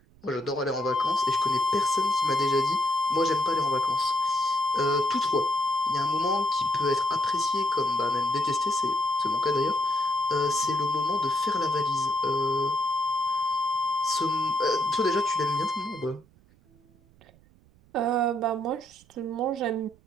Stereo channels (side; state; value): right; noise; rumble, 29 dB below the sound